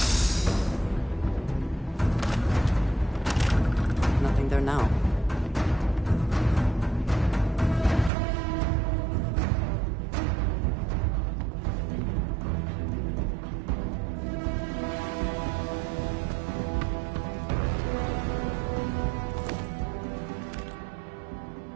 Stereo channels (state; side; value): drops out; left; at 8.1 s